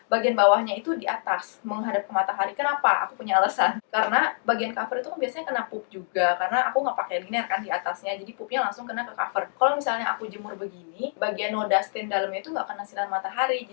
bagian bawahnya itu di atas menghadap ke matahari. Kenapa? Aku punya alasan. Karena bagian cover itu kan biasanya kena pup juga, karena aku nggak pakai liner kan di atasnya, jadi pupnya langsung kena ke cover. Kalau misalnya aku jemur begini, bagian noda stain dalamnya itu nggak kena sinar matahari.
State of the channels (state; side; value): silent; right; digital silence